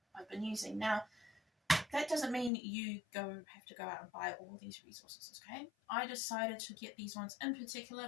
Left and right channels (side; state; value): right; drops out; at 2.5 s